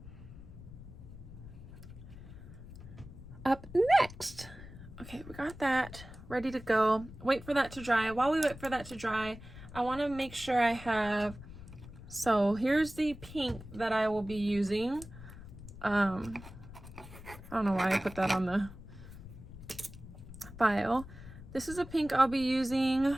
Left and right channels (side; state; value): left; noise; rumble, 15 dB below the sound